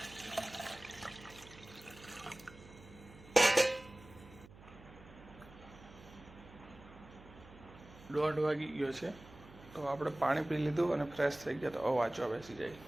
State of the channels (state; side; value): noise; right; hum, 20 dB below the sound